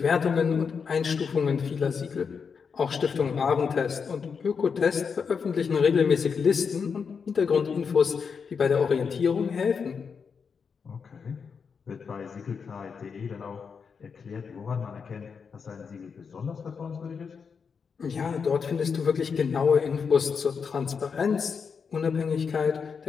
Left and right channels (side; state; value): right; quieter; 5.9 dB